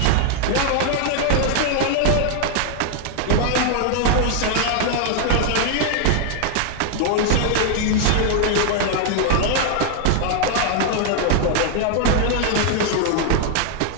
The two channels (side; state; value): both; different; correlation 0.00